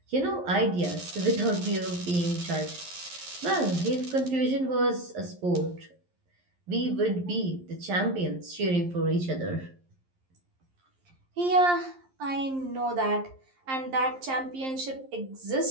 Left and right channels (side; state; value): left; late; 11 ms